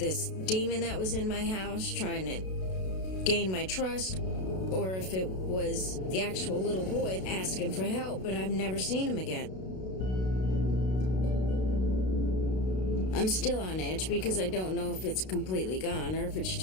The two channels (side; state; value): right; late; 32 ms